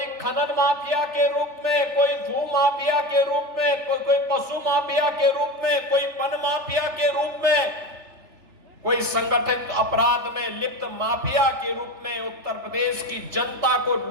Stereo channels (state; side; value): late; left; 3.4 ms